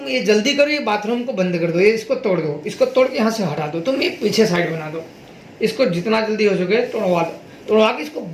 ये जल्दी करो, ये बाथरूम को बंद कर दो, ये इसको तोड़ दो, इसको तोड़ के यहाँ से हटा दो, तुम ये पीछे साइड बना दो, इसको जितना जल्दी हो सके तोड़वा दो, तोड़वा के इसको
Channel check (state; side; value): identical; both; correlation 1.00